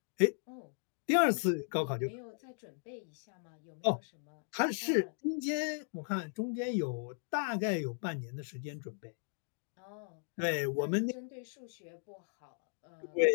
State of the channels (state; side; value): silent; right; digital silence